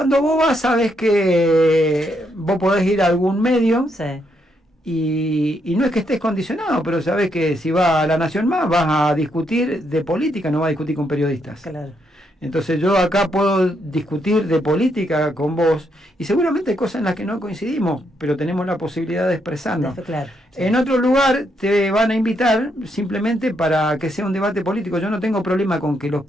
vos vas, sabés que vos podés ir a algún medio. Sí. Y no es que estés condicionado, pero sabés que si vas a La Nación Más vas a discutir de política, no vas a discutir con periodistas. Claro. Entonces yo acá puedo discutir de política con vos y seguramente hay cosas en las que no coincidimos, pero tenemos la posibilidad de expresarnos. Claro, sí. En otro lugar te van a invitar simplemente para que sea un debate político. Yo no tengo problema con que los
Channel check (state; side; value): normal; both; correlation 0.77